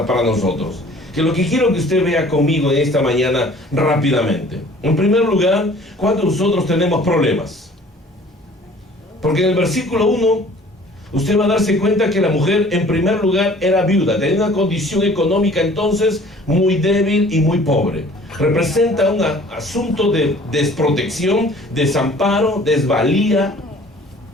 para nosotros, que lo que quiero que usted vea conmigo en esta mañana rápidamente. En primer lugar, cuando nosotros tenemos problemas, porque en el versículo 1 usted va a darse cuenta que la mujer en primer lugar era viuda, tenía una condición económica entonces muy débil y muy pobre. Representa un asunto de desprotección, desamparo, desvalía.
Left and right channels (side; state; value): both; normal; correlation 0.51